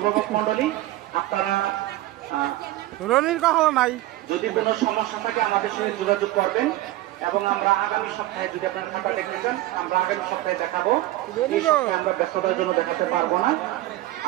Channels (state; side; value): quieter; left; 16.4 dB